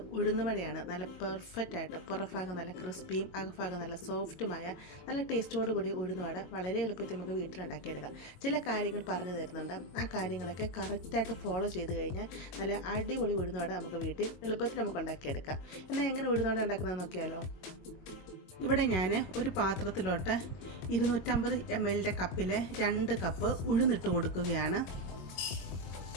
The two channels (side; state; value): right; late; 22 ms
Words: ഉഴുന്നുവടയാണ്. നല്ല പെർഫെക്റ്റായിട്ട് പുറഭാഗം നല്ല ക്രിസ്പിയും അകഭാഗം നല്ല സോഫ്റ്റുമായ നല്ല ടേസ്റ്റോട് കൂടി ഉഴുന്നുവട വളരെ എളുപ്പത്തിൽ നമുക്ക് വീട്ടിലുണ്ടാക്കിയെടുക്കാം. ചില കാര്യങ്ങൾ പറഞ്ഞു തരുന്നുണ്ട്. ആ കാര്യങ്ങളൊക്കെ കറക്റ്റായിട്ട് ഫോളോ ചെയ്ത് കഴിഞ്ഞാൽ നല്ല അടിപൊളി ഉഴുന്നുവട നമുക്ക് വീട്ടിൽ എളുപ്പത്തിൽ നമുക്ക് ഉണ്ടാക്കിയെടുക്കാം. എന്നാൽ എങ്ങനെ ഉഴുന്നുവട ഉണ്ടാക്കുന്നത് നോക്കിയാലോ. ഇവിടെ ഞാൻ ഒരു പാത്രത്തിലോട്ട് 250 ml കപ്പിൽ 2 കപ്പ് ഉഴുന്നിട്ട് കൊടുക്കുകയാണ്.